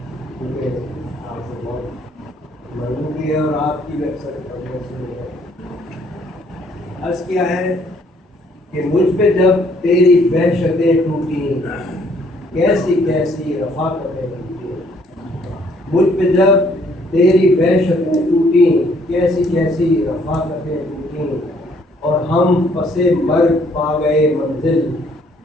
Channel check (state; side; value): normal; both; correlation 0.64